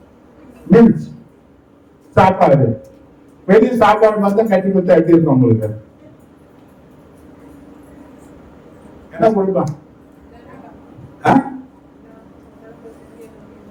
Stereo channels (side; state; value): both; identical; correlation 1.00